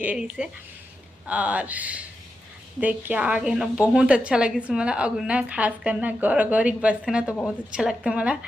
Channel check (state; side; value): normal; both; correlation 0.88